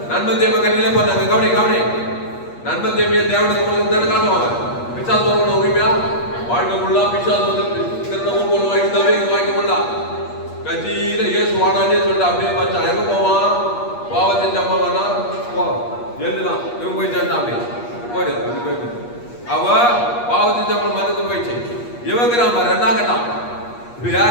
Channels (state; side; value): late; right; 8.4 ms